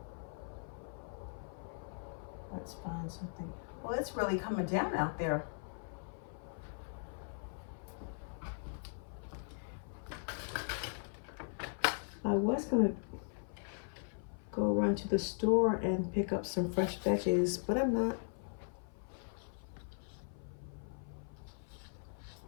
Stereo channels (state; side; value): silent; right; 52 dB below the other